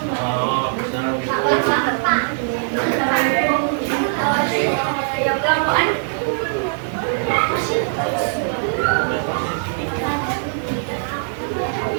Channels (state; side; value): silent; left; digital silence